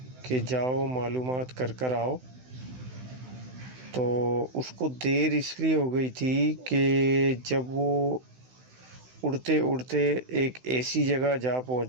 کہ جاؤ معلومات کر کر آؤ، تو اس کو دیر اس لیے ہو گئی تھی کہ جب وہ اڑتے اڑتے ایک ایسی جگہ جا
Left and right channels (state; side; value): late; left; 16 ms